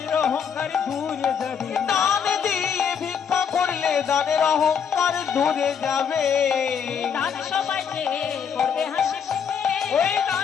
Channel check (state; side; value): quieter; right; 7.3 dB